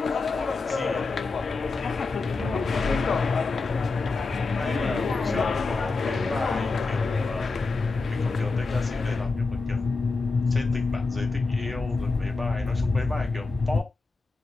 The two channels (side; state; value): right; quieter; 3.8 dB